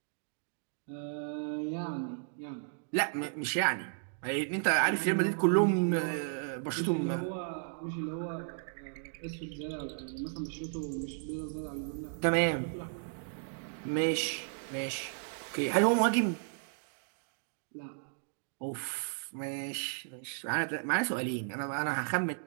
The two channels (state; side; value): silent; left; digital silence